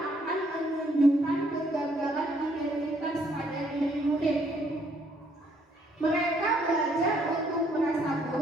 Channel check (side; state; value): both; normal; correlation 0.68